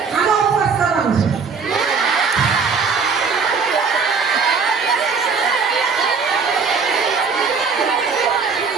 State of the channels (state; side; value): quieter; left; 5.2 dB